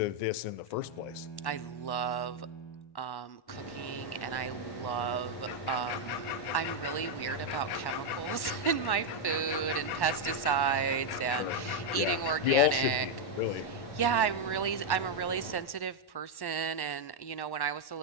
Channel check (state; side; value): late; right; 1.1 ms